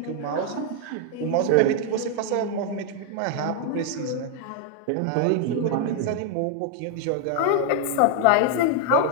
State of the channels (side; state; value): both; different; correlation 0.00